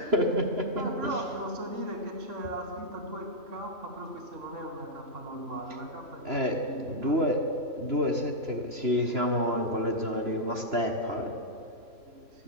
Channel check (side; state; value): left; late; 3.0 ms